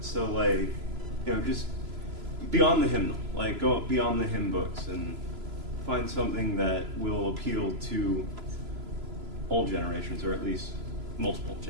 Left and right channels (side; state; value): left; late; 3.0 ms